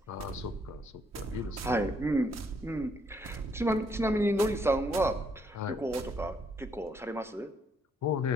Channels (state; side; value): normal; both; correlation 0.71